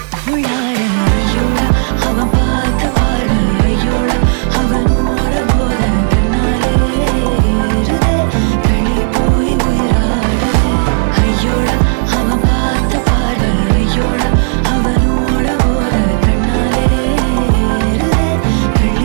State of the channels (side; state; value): left; silent; 65 dB below the other